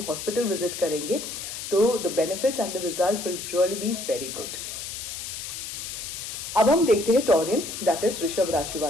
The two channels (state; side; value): noise; left; hiss, 7 dB below the sound